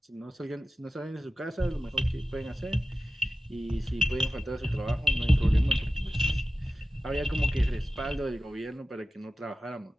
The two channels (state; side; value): normal; both; correlation 0.92